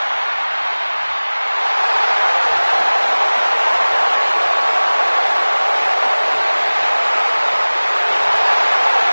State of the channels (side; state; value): both; inverted; correlation -1.00